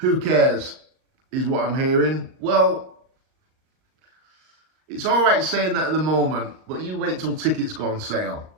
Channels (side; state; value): left; late; 38 ms